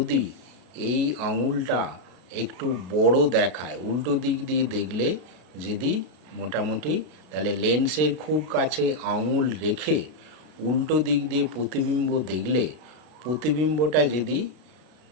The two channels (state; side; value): late; left; 33 ms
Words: এই আঙুলটা একটু বড় দেখায়, উল্টো দিক দিয়ে দেখলে যদি মোটামুটি, তাহলে লেন্সের খুব কাছে আঙুল রেখে উল্টো দিক দিয়ে প্রতিবিম্ব দেখলে প্রতিবিম্বটা যদি